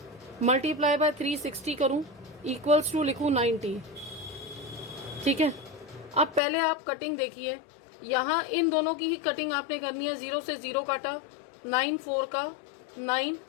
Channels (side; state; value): right; drops out; at 6.4 s